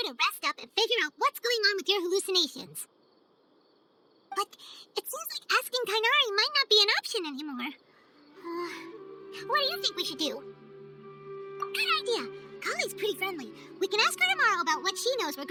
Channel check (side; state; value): both; identical; correlation 1.00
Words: to rest up and figure out what's going on with your hallucinations. But it seems like asking Tainari might not be an option anymore. What do you think we should do? Good idea. Kali's pretty friendly. We can ask her tomorrow about what she knows